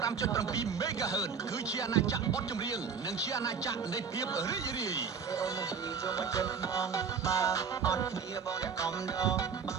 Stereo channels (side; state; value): left; quieter; 6.2 dB